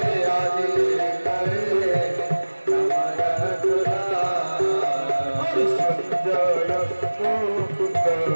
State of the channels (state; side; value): inverted; both; correlation -1.00